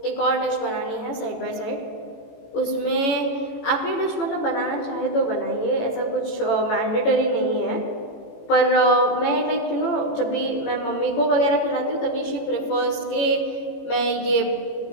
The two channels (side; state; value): right; late; 18 ms